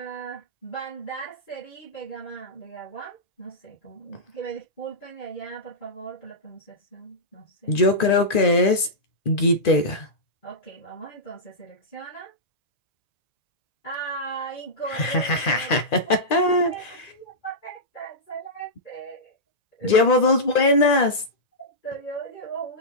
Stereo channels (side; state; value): right; late; 2.5 ms